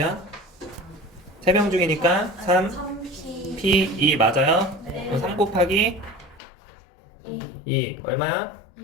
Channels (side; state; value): right; drops out; at 6.4 s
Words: 3명 중이니까 3 3P. P 2 맞아요? 네. 그럼 3 곱하기 2 얼마야?